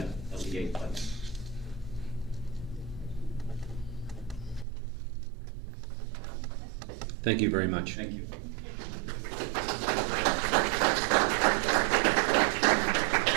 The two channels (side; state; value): left; drops out; at 4.7 s